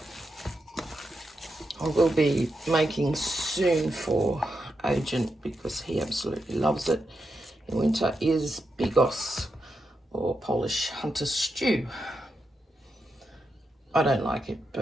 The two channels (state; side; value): normal; both; correlation 0.86